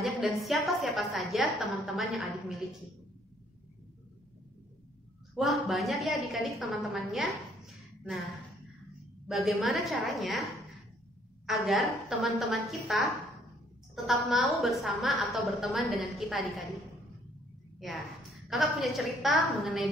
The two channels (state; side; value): normal; both; correlation 0.64